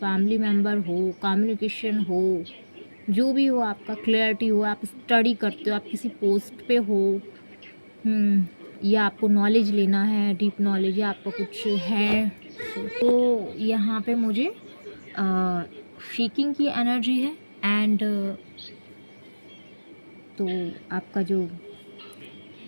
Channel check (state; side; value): inverted; both; correlation -1.00